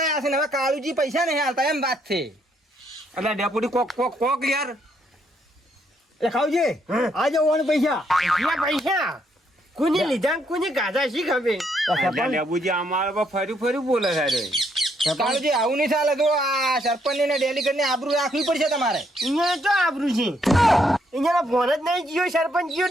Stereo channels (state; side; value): normal; both; correlation 0.73